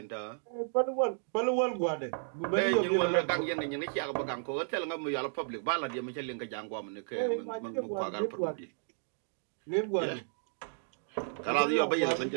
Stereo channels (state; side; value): silent; left; digital silence